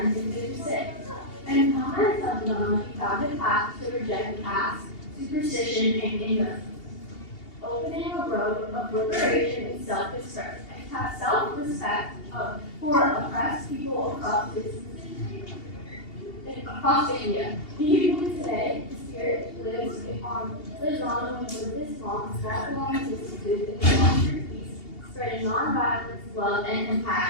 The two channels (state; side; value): late; right; 2.8 ms